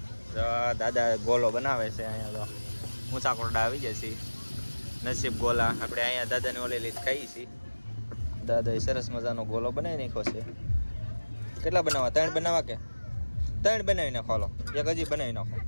જો દાદા ગોલો બનાવે છે અહીંયા તો ઊંચા કોરડા આવી જાય છે નસીબ ગોલા આપણે અહીંયા દાદાને ઓલે લીધ ખાઈ છીએ દાદાએ સરસ મજાનો ગોલો બનાવી નાખ્યો છે કેટલા બનાવવા 3 બનાવવા કે 3 બનાવી નાખો હાલો એક હજી બનાવી નાખો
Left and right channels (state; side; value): inverted; both; correlation -1.00